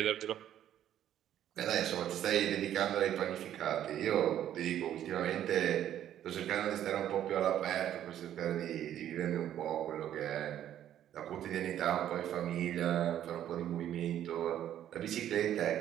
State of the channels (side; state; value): left; quieter; 11.1 dB